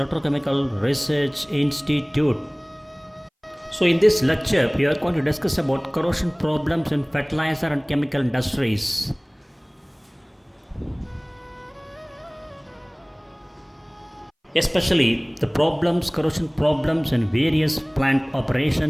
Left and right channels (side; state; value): both; identical; correlation 1.00